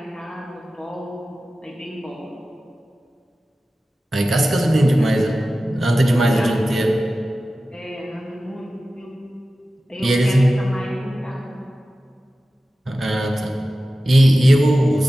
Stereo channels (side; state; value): both; normal; correlation 0.95